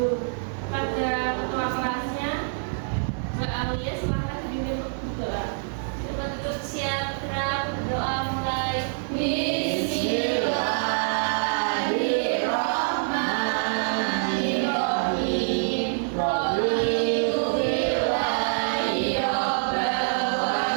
Pada ketua kelasnya, Mbak Alia, silahkan dipimpin untuk berdoa. Kita tutup siap, gerak, berdoa mulai. Bismillahirrahmanirrahim.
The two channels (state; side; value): silent; left; digital silence